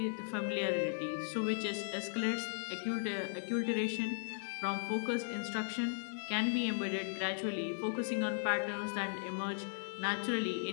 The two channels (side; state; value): right; silent; digital silence